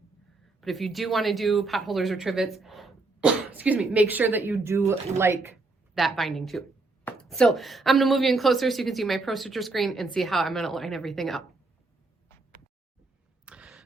But if you do want to do pot holders or trivets, excuse me, make sure that you do like that binding too. So I'm gonna move you in closer so you can see my ProStitcher screen and see how I'm gonna line everything up.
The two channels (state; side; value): quieter; left; 3.4 dB